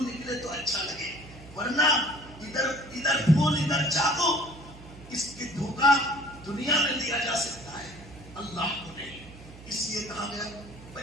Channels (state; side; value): noise; right; hum, 18 dB below the sound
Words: نکلے تو اچھا لگے، ورنہ ادھر پھول ادھر چاقو، اس کی دھوکہ دنیا میں دیا جا سکتا ہے، اللہ کو نہیں۔ اس لیے کہا گیا